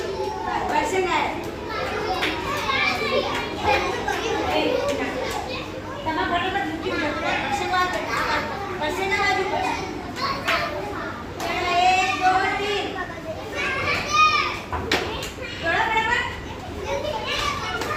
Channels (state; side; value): identical; both; correlation 1.00